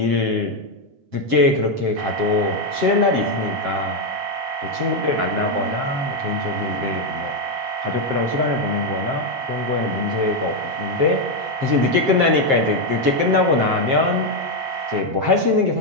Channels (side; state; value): left; late; 7.6 ms